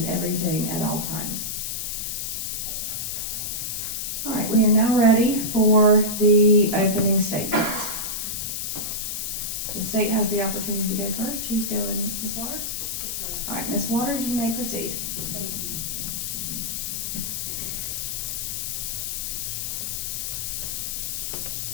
everything at all times. All right, we are now ready for the opening statements. The state has the opportunity to go first. Who's going? Ms. Waters? All right, Ms. Waters, you may proceed. Thank you.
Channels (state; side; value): noise; left; hiss, 3 dB below the sound